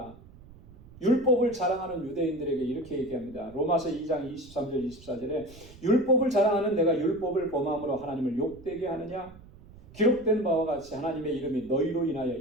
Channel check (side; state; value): right; noise; rumble, 21 dB below the sound